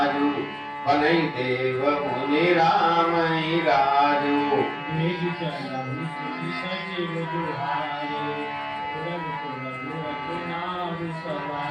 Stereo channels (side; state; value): both; identical; correlation 1.00